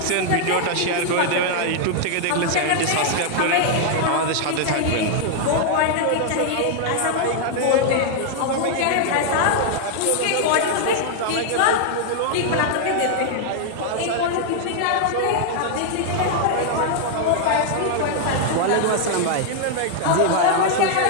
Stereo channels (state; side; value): different; both; correlation 0.00